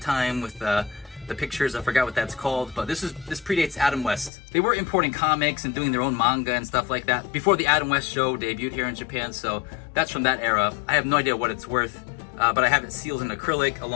with the pictures. I forgot what that's called, but this predates Adam West. They were importing comics and doing their own manga and stuff like that before the Adam West show debuted here in Japan, so that's from that era. I have no idea what it's worth, but I have it sealed in acrylic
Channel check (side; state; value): right; drops out; at 4.3 s